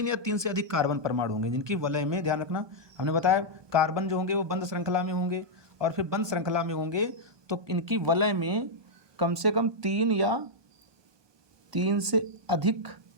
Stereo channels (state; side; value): late; left; 1.2 ms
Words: या 3 से अधिक कार्बन परमाणु होंगे, जिनकी वलय में, ध्यान रखना हमने बताया कार्बन जो होंगे वो बंद श्रृंखला में होंगे, और फिर बंद श्रृंखला में होंगे तो इनकी वलय में कम से कम 3 या 3 से अधिक